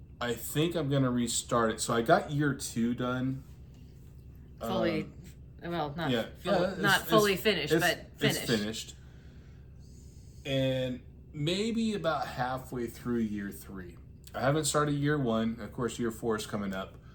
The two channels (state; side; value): identical; both; correlation 1.00